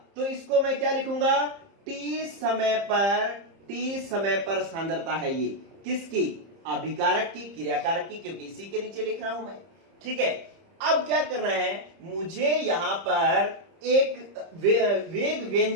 तो इसको मैं क्या लिखूंगा? t समय पर सांद्रता है ये किसकी? अभिकारक की, क्रियाकारक की, क्योंकि इसी के नीचे लिख रहा हूं मैं। ठीक है, अब क्या करना है, मुझे यहां पर एक वेग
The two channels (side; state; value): left; late; 30 ms